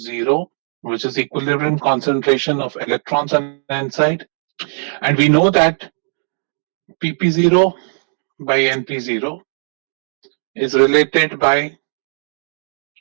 which is equilibrium concentration of electrons on N side. And we know that PP0 by NP0 is related by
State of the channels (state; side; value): silent; left; digital silence